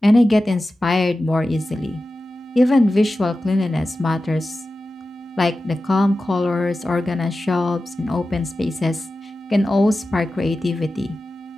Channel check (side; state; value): both; normal; correlation 0.94